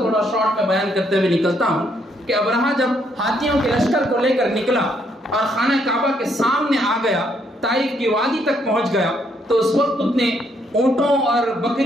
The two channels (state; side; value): normal; both; correlation 0.72